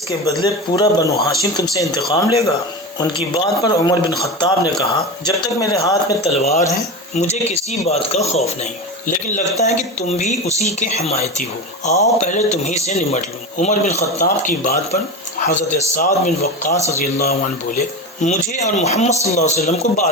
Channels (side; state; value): both; normal; correlation 0.24